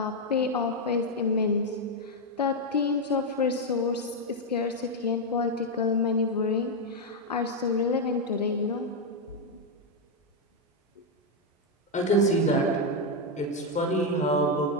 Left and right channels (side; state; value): both; normal; correlation 0.02